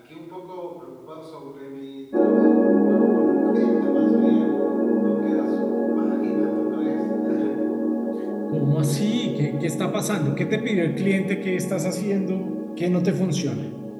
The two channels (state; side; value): identical; both; correlation 1.00